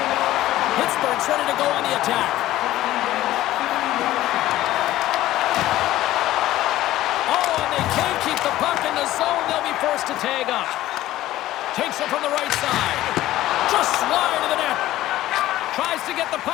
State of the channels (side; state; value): right; quieter; 15.0 dB